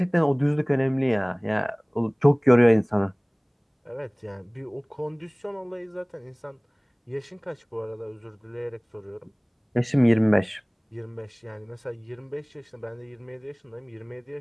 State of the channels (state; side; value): identical; both; correlation 1.00